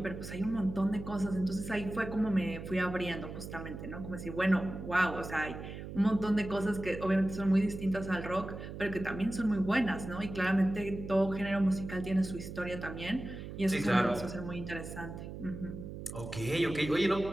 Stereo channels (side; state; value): right; noise; hum, 9 dB below the sound